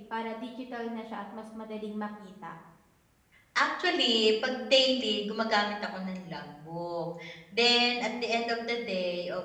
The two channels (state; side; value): identical; both; correlation 1.00